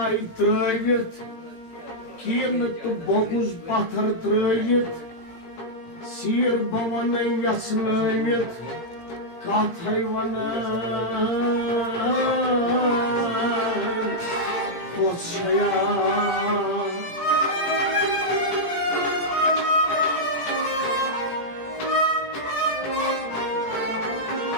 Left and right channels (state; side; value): late; right; 17 ms